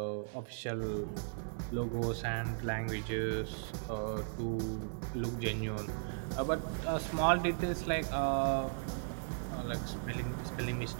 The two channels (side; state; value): left; silent; digital silence